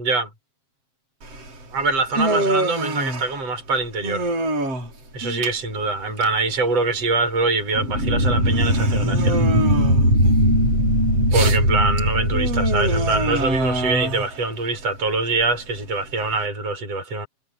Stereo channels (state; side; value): late; left; 7.5 ms